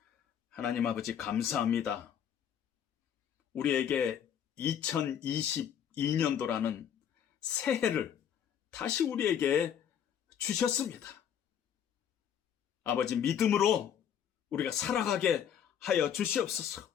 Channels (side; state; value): right; quieter; 8.9 dB